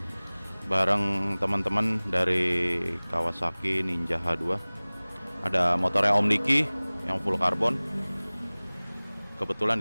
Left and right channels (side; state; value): both; inverted; correlation -1.00